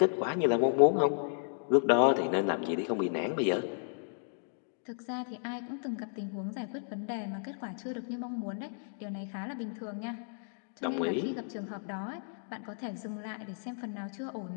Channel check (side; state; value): right; silent; digital silence